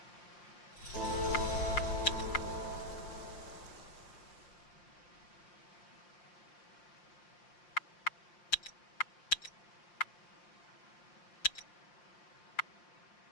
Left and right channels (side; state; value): right; late; 5.7 ms